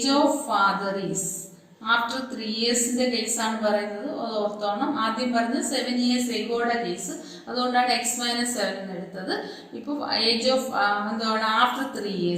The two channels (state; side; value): identical; both; correlation 1.00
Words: of father is after 3 yearsന്റെ കേസാണ് പറയുന്നത്. അത് ഓർത്തോണം. ആദ്യം പറഞ്ഞത് 7 years എഗോയുടെ കേസ്, അതുകൊണ്ടാണ് എക്സ് മൈനസ് 7 എന്ന് എടുത്തത്. ഇപ്പോൾ ഏജ് ഓഫ് എന്താണ്? After 3